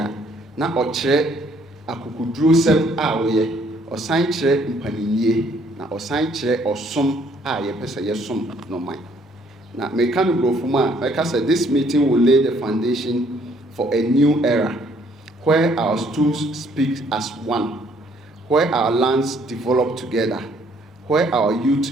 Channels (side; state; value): both; normal; correlation 0.64